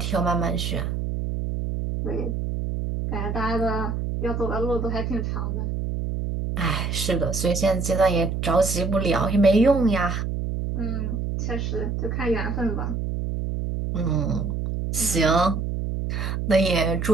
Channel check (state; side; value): noise; right; hum, 2 dB below the sound